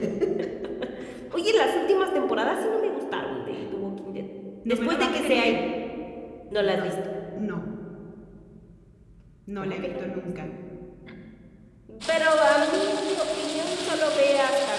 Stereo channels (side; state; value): both; identical; correlation 1.00